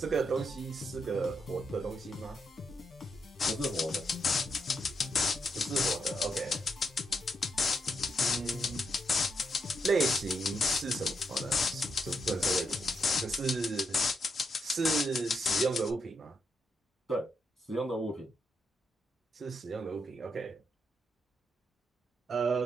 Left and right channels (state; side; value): normal; both; correlation 0.80